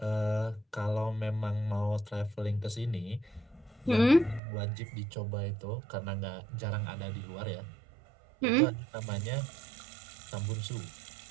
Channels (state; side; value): drops out; left; at 4.4 s